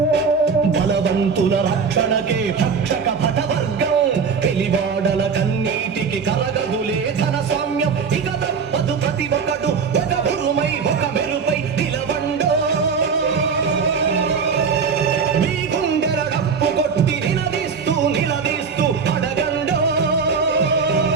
బలవంతుల రక్షణకే భక్షక భటవర్గం వెలివాడల కన్నీటికి కలగదులే ధన స్వామ్యం ఇక తప్పదు ప్రతి ఒక్కడు ఒక ఉరుమై ఒక మెరుపై నిలవండో మీ గుండెల డప్పు కొట్టి నిలదీస్తూ అడగండో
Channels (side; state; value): left; quieter; 5.7 dB